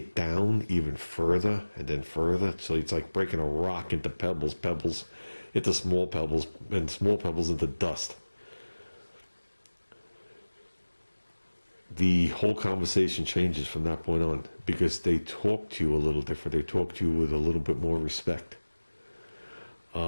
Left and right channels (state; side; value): inverted; both; correlation -1.00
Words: down even further and then further. So it's like breaking a rock into pebbles into small pebbles, and small pebbles into dust. The whole conversation changes from that point on because they talk to you a little different. They talk to you with a little bit more respect.